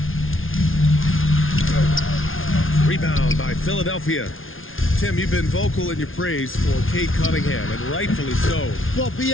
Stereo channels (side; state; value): right; late; 0.59 ms